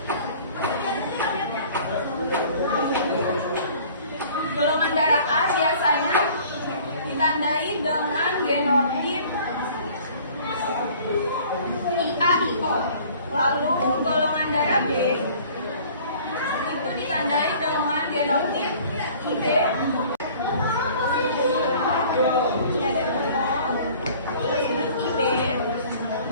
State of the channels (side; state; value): both; inverted; correlation -0.50